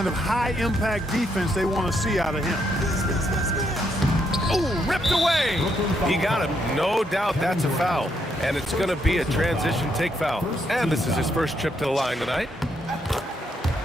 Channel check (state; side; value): normal; both; correlation 0.76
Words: of high-impact defense they want to see out of him. Oh, ripped away. He got him. No doubt that's a foul. And it's going to be a transition take foul. And this is his first trip to the line tonight.